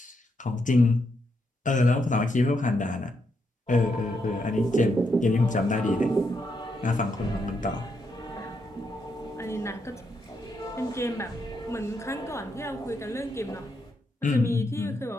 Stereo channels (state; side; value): normal; both; correlation 0.80